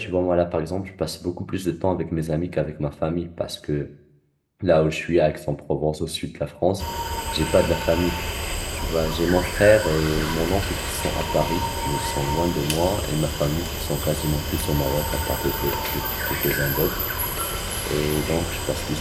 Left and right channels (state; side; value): identical; both; correlation 1.00